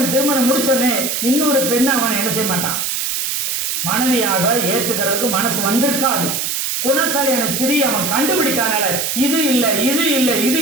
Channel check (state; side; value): noise; right; hiss, 1 dB below the sound